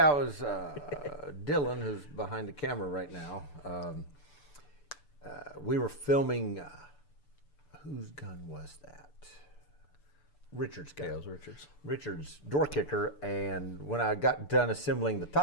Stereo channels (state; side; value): late; right; 6.8 ms